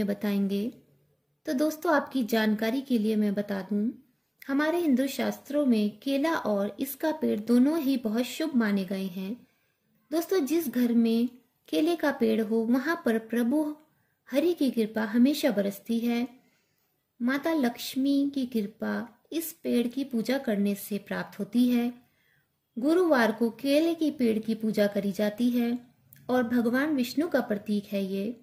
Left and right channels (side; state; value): both; identical; correlation 1.00